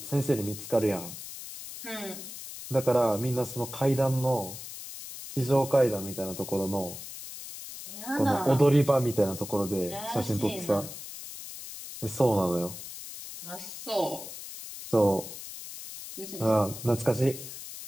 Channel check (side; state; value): left; noise; hiss, 11 dB below the sound